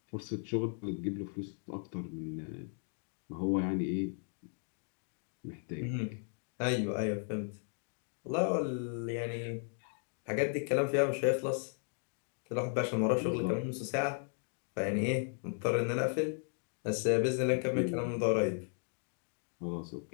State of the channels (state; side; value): silent; right; 54 dB below the other